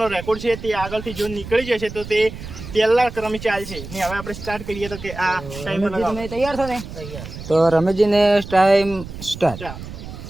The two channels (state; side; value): noise; right; rumble, 12 dB below the sound